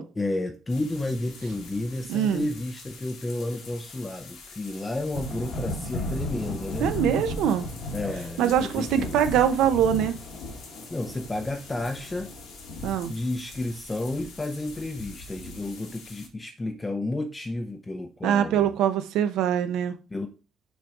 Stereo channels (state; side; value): quieter; left; 4.0 dB